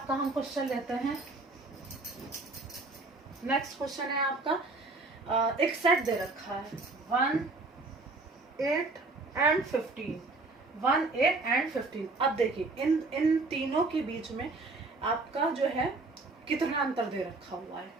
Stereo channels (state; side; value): quieter; left; 3.4 dB